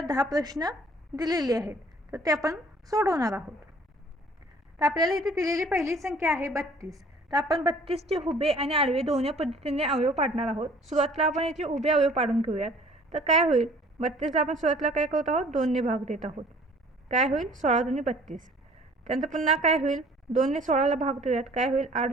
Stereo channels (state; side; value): normal; both; correlation 0.53